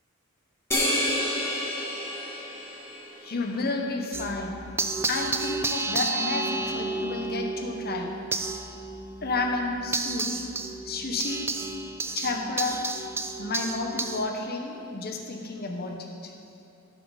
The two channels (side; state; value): both; normal; correlation -0.01